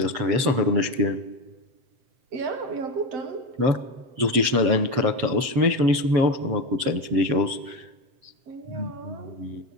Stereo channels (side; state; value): left; late; 7.7 ms